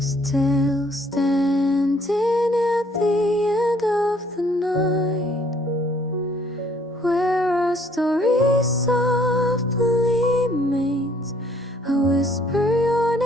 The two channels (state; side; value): normal; both; correlation 0.62